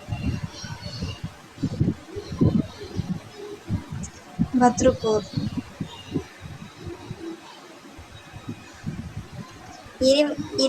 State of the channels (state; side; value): identical; both; correlation 1.00